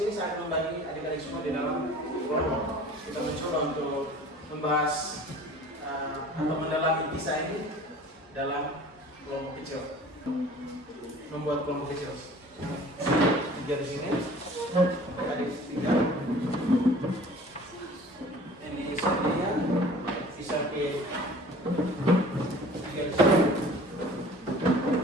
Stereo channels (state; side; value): normal; both; correlation 0.46